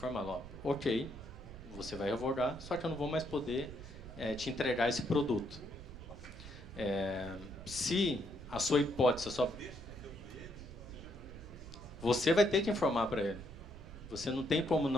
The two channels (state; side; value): noise; right; rumble, 14 dB below the sound